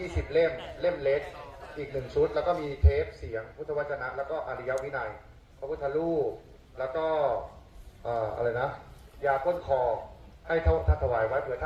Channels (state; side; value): identical; both; correlation 1.00